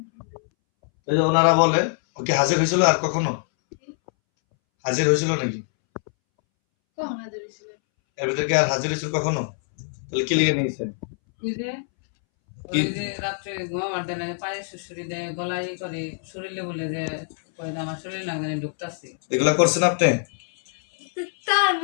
এই যে ওনারা বলে ওকে হাজির হয়েছিল আর কখনো হাজির হয়েছিল নাকি কখন হাজির ছিল এর ভিতরে কি আর হাজির হয়েছিল কখনো তাহলে কি লিখে নিয়েছেন ওই যে রাত্রে ঘুমাবার দেয় না পায়ে শুশুরি দেয় গলায় করে শরীরে বলে যে কয় আমার শরীর লাগবে না ঢুকতাছি এগুলা করছেন আপনি তার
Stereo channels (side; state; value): right; silent; 63 dB below the other